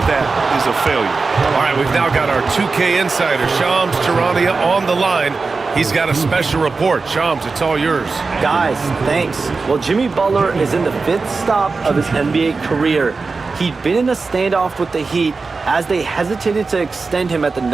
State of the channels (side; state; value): left; quieter; 4.2 dB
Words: that is a failure. All right, we've now got our 2K insider, Shams Charania, on the line. He's got a special report. Shams, it's all yours. Guys, thanks. Well, Jimmy Butler is in the 5th stop of his NBA career. He'd been in a standoff with the Heat. As they hesitated to extend him at the